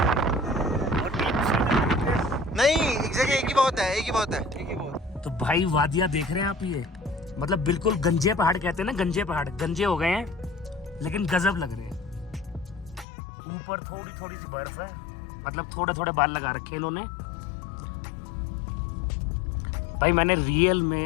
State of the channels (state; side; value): drops out; right; at 13.1 s